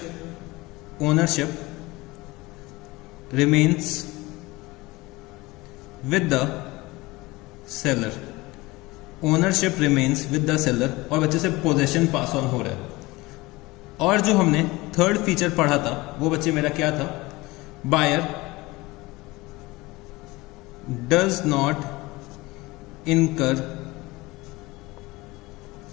remains with the seller, ownership remains with the seller, और बच्चे से पोजेशन पास ऑन हो रहा है। और जो हमने थर्ड फीचर पढ़ा था वो बच्चे मेरा क्या था? बायर डज नॉट इनकर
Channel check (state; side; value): quieter; right; 21.6 dB